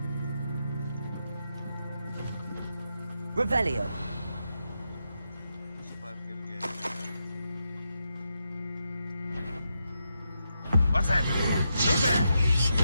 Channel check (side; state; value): both; inverted; correlation -0.84